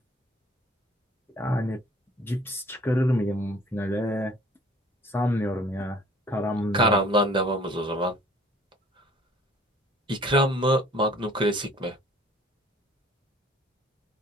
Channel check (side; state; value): both; normal; correlation 0.54